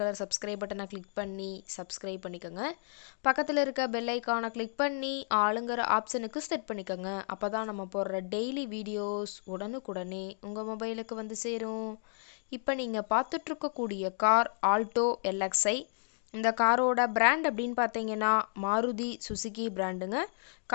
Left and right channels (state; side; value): silent; right; digital silence